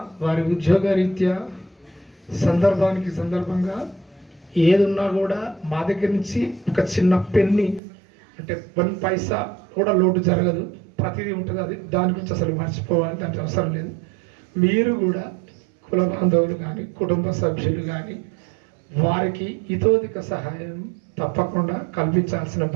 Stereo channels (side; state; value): left; drops out; at 7.8 s